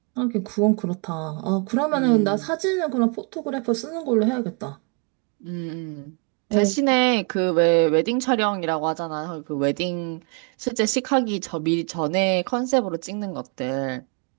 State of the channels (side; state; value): left; quieter; 34.9 dB